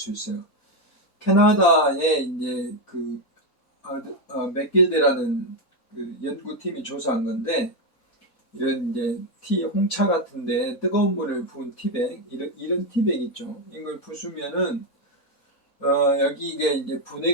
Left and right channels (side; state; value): both; normal; correlation 0.05